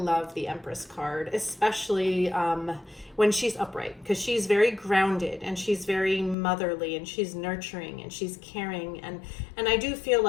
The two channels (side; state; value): right; drops out; at 6.4 s